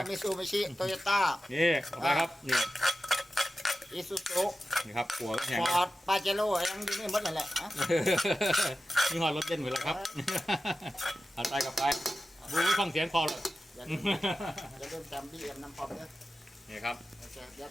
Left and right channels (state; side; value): normal; both; correlation 0.93